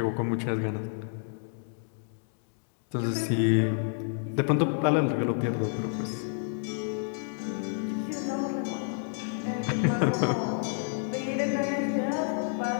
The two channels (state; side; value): silent; right; 58 dB below the other